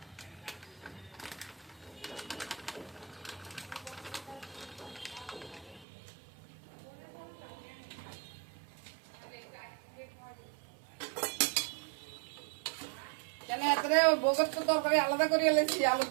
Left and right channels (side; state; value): left; drops out; at 5.9 s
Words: কেন এতরে বগত তো তরকারি আলাদা করে এলেছি আলুর